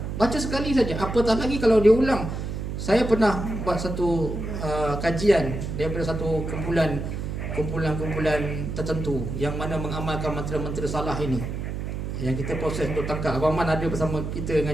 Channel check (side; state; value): right; noise; hum, 5 dB below the sound